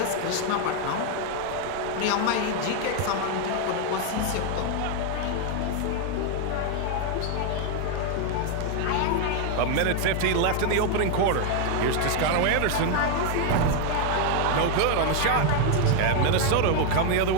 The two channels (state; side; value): different; both; correlation 0.01